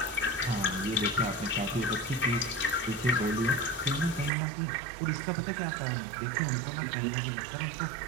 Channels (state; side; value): drops out; left; at 4.3 s